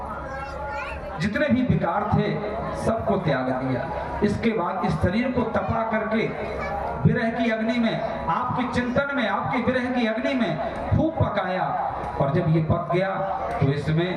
जितने भी विकार थे सबको त्याग दिया। इसके बाद इस शरीर को तपा करके विरह की अग्नि में, आपके चिंतन में, आपके विरह की अग्नि में खूब पकाया, और जब ये पक गया तो इसमें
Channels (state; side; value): identical; both; correlation 1.00